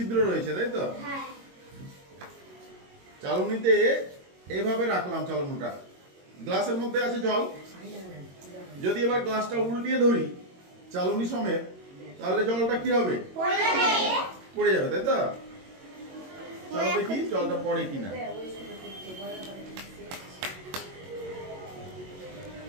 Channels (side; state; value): left; late; 22 ms